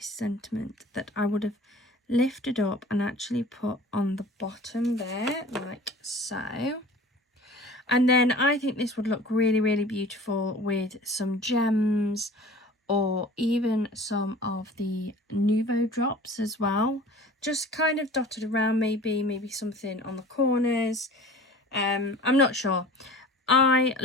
sentiment that I would have lifted up and actually put on the bottom there, like so. And then I think this would look really, really beautiful with some gems or even some of the Nuvo drops as well. Just kind of dotted around, maybe something on the corners. I'm not sure. I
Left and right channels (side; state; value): both; normal; correlation 0.43